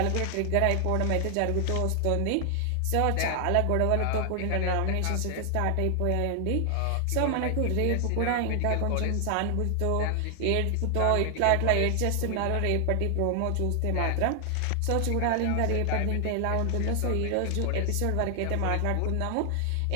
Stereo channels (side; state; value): both; different; correlation 0.00